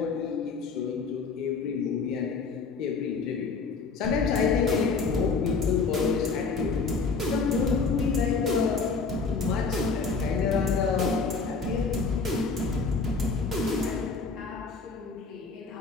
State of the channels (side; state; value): right; quieter; 4.6 dB